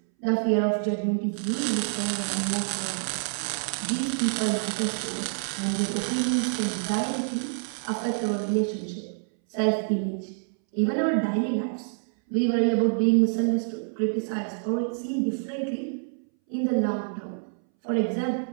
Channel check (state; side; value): silent; left; 60 dB below the other